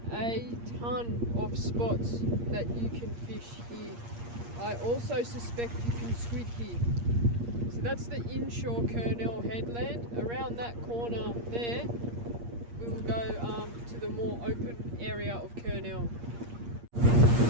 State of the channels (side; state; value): left; late; 8.5 ms